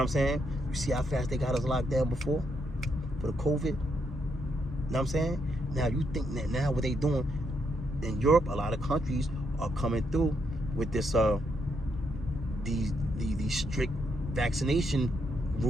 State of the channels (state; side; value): normal; both; correlation 0.78